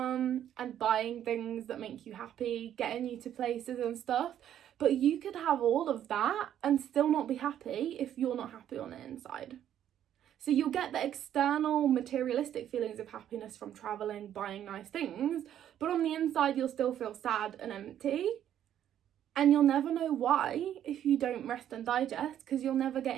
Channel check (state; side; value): quieter; left; 10.6 dB